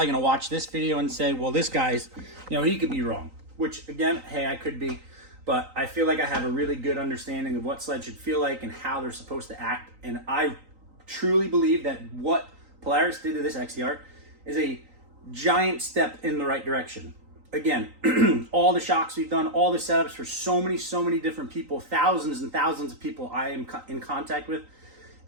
going to watch this video and say, well, this guy's, he could be wrong, which again, hey, I could be, but I feel like I have a really good understanding of what sleds should feel like and how they're supposed to act. And I truly believe that what Polaris did to this XCR is a giant step in the right direction. Again, all the shocks we've done, all the setups for so many different people, thousands and thousands of people I am in contact with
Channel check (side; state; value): left; late; 3.9 ms